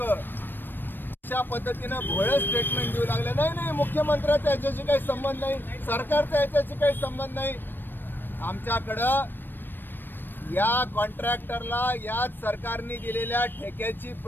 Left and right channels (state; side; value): late; right; 0.094 ms